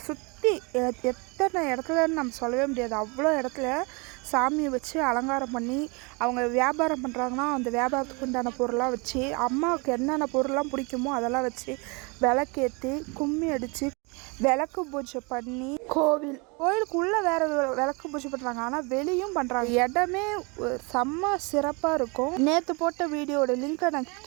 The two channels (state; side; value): quieter; left; 30.1 dB